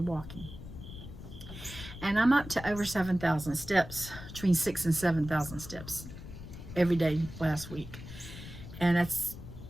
walking. And I'm up to over 7,000 steps, between 6,000 and 7,000 steps every day last week. And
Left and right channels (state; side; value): noise; left; rumble, 13 dB below the sound